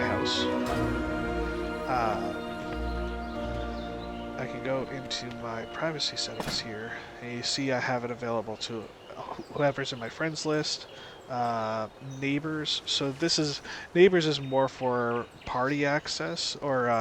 I can go into my privacy settings here, and you see I have it available to whoever's in my friends list, neighbors. So neighbors is more for party access,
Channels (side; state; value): both; identical; correlation 1.00